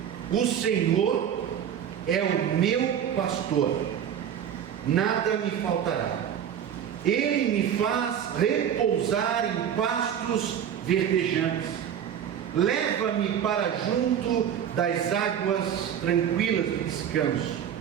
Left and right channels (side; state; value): left; quieter; 9.1 dB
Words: o Senhor é o meu pastor, nada me faltará. Ele me faz repousar em pastos verdejantes, leva-me para junto das águas tranquilas de descanso,